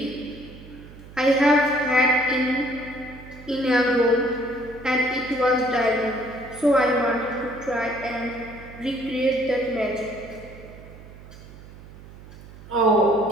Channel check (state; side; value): noise; right; hum, 18 dB below the sound